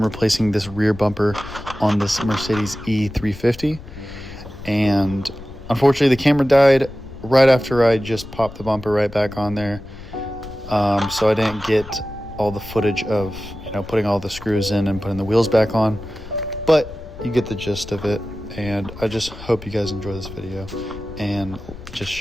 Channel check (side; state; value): left; noise; rumble, 15 dB below the sound